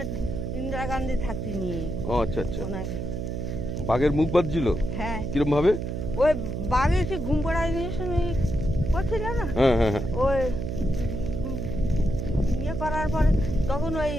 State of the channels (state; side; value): noise; right; hum, 3 dB below the sound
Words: ইন্দিরা গান্ধী থাকতে নিয়ে। ও আচ্ছা আচ্ছা, ওনাকে বাঘের মুখ বাঁধছিল? হ্যাঁ। কিরম ভাবে? ওই বাঘে সে ঘুম পড়ায় নিয়ে করছিল না। হ্যাঁ হ্যাঁ হ্যাঁ। ওই ইয়ে করার পরে তখন ওই